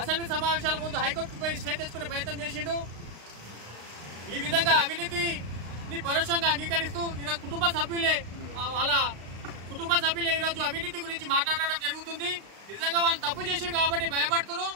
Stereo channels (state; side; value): late; left; 35 ms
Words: సమావేశాల ముందు హైకోర్టుకు పోయి స్టే తెచ్చుకునే ప్రయత్నం చేసిండు. ఈ విధంగా అవినీతిని పరోక్షంగా అంగీకరిస్తూ ఈరోజు కుటుంబ సభ్యులే ఈరోజు అవినీతి గురించి మాట్లాడడం జరుగుతుంది. నిజంగా వాళ్ళు తప్పు చేశారు కాబట్టి భయపడుతున్నారు.